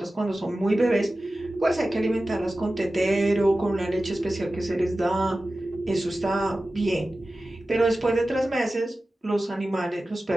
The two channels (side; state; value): both; normal; correlation 0.95